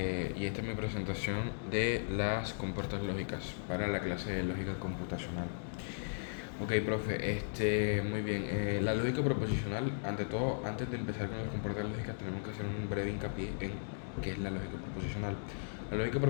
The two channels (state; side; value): silent; right; digital silence